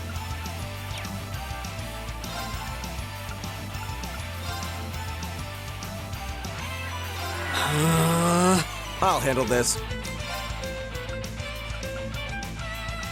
I'll handle this.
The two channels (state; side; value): identical; both; correlation 1.00